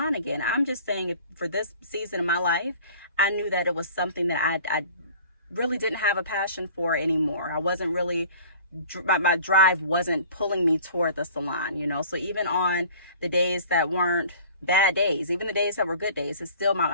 again. I'm just saying for this season of my life, I knew that it was something that I really didn't have a passion for anymore. I wasn't really, my drive wasn't pulling me toward the salon, So even on the days that weren't bad days, even the days that were good days, it's still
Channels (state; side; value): inverted; both; correlation -0.47